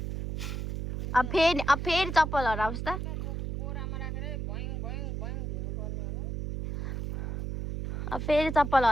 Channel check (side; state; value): right; noise; hum, 4 dB below the sound